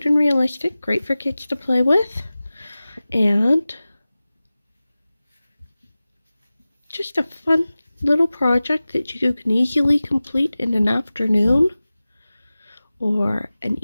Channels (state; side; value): inverted; both; correlation -0.97